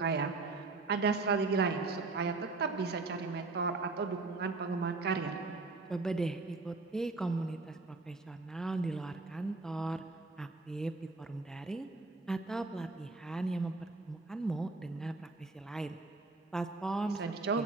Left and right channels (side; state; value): left; quieter; 3.6 dB